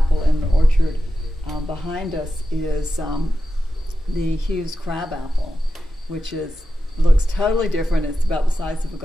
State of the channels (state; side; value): normal; both; correlation 0.91